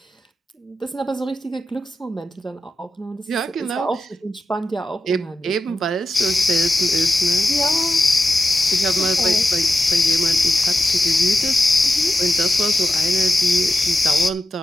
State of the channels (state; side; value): normal; both; correlation 0.90